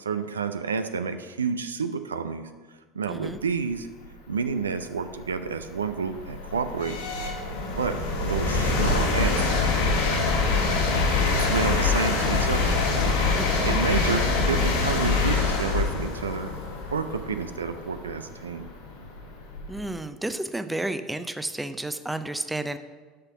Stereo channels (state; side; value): normal; both; correlation 0.02